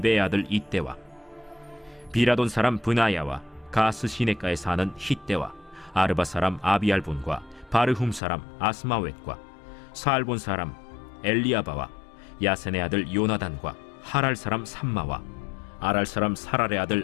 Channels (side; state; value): right; drops out; at 8.2 s